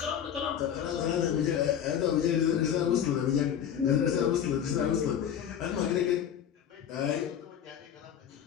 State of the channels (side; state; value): right; quieter; 9.1 dB